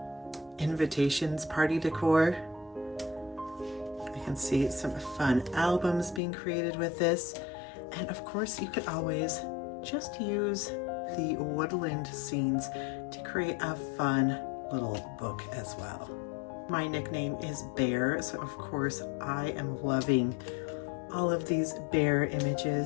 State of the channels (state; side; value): drops out; right; at 6.2 s